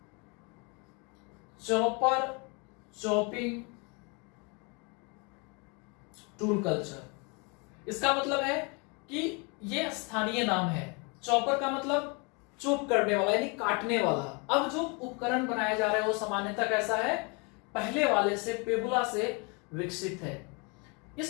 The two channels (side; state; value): right; quieter; 31.7 dB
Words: चॉपर चॉपिंग टूल कल्चर। इसका मतलब है कि यह स्थानीय नाम है। चॉपर का मतलब चॉप करने वाला यानी काटने वाला। अब जो उपकरण बनाए जा रहे हैं वो सामान्यतः कैसा है, पहले वाले से, पेबुला से विकसित है।